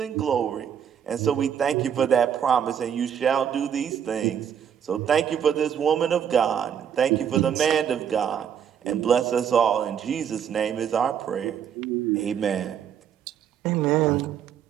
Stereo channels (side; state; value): left; quieter; 8.5 dB